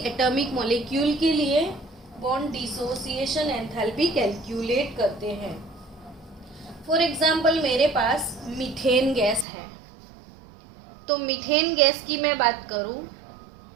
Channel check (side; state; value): left; drops out; at 9.5 s